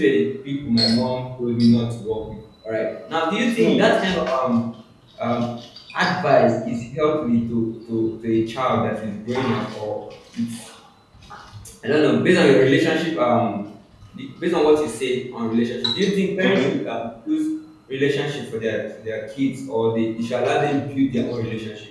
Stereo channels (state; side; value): identical; both; correlation 1.00